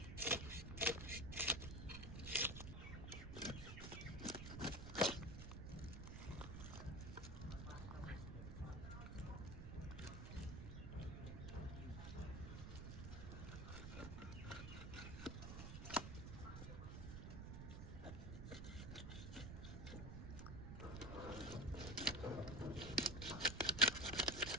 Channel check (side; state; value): right; noise; rumble, 6 dB below the sound